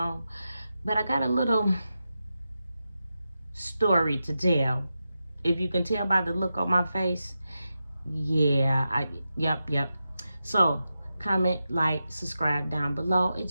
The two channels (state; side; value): inverted; both; correlation -0.90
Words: But I got a little story to tell. If you can tell by the look on my face, yeah, yep. So comment, like, subscribe down below. It